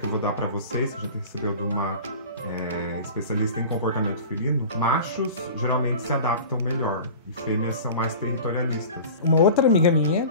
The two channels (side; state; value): both; inverted; correlation -0.38